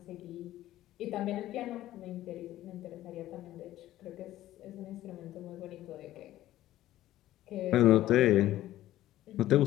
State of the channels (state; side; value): quieter; right; 14.3 dB